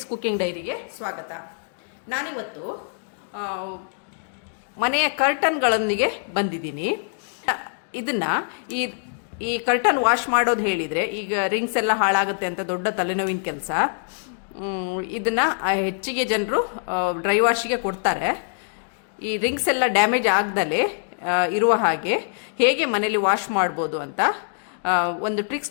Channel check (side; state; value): right; silent; digital silence